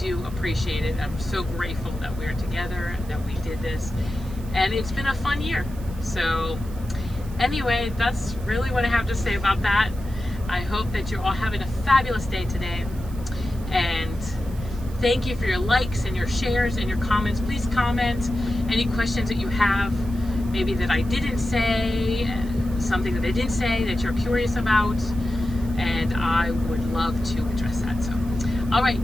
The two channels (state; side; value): noise; right; hiss, 22 dB below the sound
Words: appreciate it. I'm so grateful that we're together, that we did this, and it's been a fun year. So anyway, that's really what I have to say about that. I hope that you're all having a fabulous day today, and thank you for your likes and your shares and your comments. Please comment any questions that you have, maybe that I didn't say, something that I didn't say that you're curious about, and I would love to address that. So, all right,